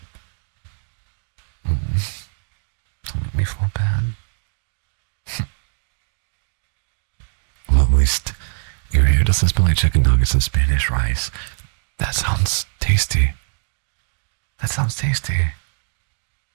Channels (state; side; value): silent; left; digital silence